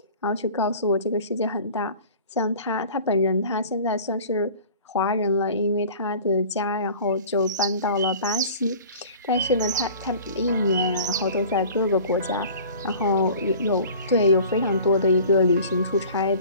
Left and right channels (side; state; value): both; inverted; correlation -0.44